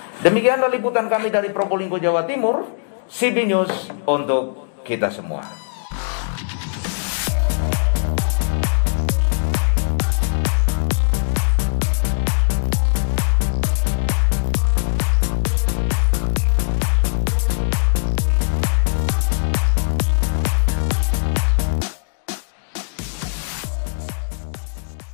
Demikianlah liputan kami dari Probolinggo, Jawa Timur. CB News untuk kita semua.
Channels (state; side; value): silent; right; digital silence